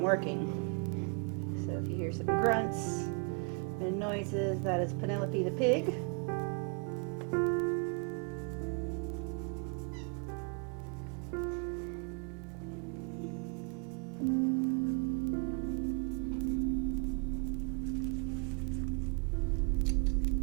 working. So if you hear some grunts and noises, that is Penelope the pig.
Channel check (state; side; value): quieter; left; 36.6 dB